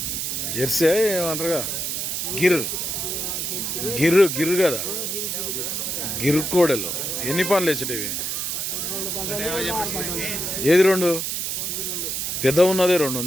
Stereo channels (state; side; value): noise; right; hiss, 2 dB below the sound